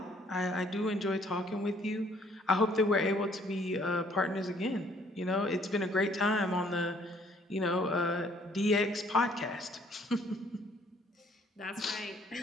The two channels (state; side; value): normal; both; correlation 0.62